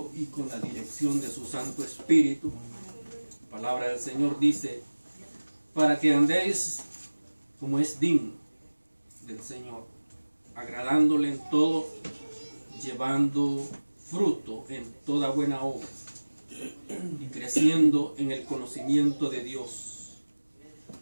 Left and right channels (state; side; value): inverted; both; correlation -1.00